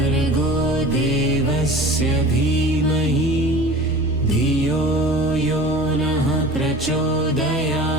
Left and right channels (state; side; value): normal; both; correlation 0.40